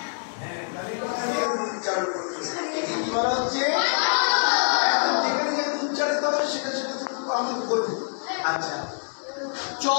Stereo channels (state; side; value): silent; right; 61 dB below the other